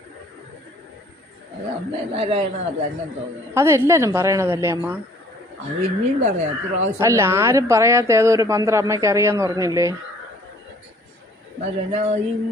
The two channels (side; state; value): both; normal; correlation 0.56